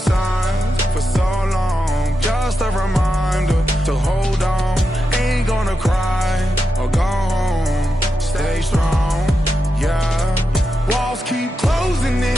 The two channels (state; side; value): normal; both; correlation 0.88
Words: for so long. Just a reminder to hold on. Ain't gonna cry or go home. Stay strong, yeah. Walls keep closing